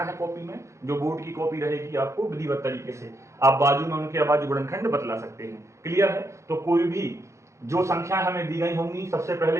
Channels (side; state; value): left; late; 0.14 ms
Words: है कॉपी में, जो बोर्ड की कॉपी रहेगी आपको विधिवत तरीके से आप बाजू में उनके अभाज्य गुणनखंड बतला सकते हैं। क्लियर है? तो कोई भी जो संख्याएं हमें दी गई होंगी सबसे